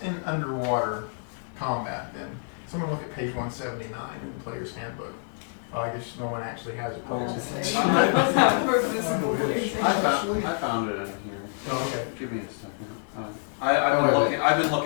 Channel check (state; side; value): silent; right; digital silence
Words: in underwater combat. Then someone look at page 179 in the player's handbook. Oh, I guess no one actually has a player's handbook. Let's have a physical reason. I found it in here. Oh, okay. Give me a second. I've been